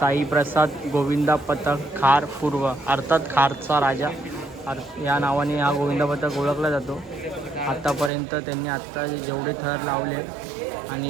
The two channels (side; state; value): left; drops out; at 8.1 s